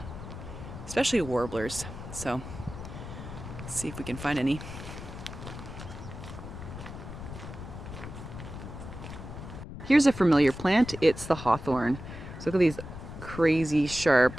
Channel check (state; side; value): noise; left; rumble, 11 dB below the sound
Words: especially warblers. So let's see if we can find any. Here's a familiar plant. It's the hawthorn. So look at these crazy